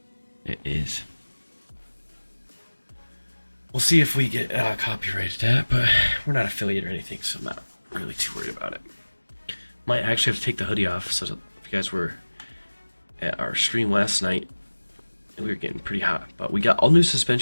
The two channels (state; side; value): inverted; both; correlation -1.00